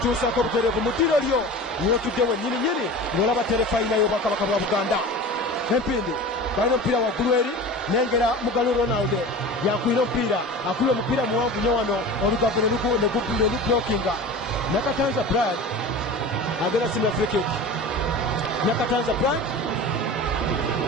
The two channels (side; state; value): both; normal; correlation 0.34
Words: butereevu mu ddiro lyo w'otudde wennyininyini ng'olaba terefayina y'obwakabaka bwa Buganda empindi balina omupiira waggulu eri nengera Mugalu Ronald yakwira omupiira akubye omupiira muwanvu nnyo wano olugave ne lublokinga Nakatanza Brian agenda simula free kick Nakatanza Brian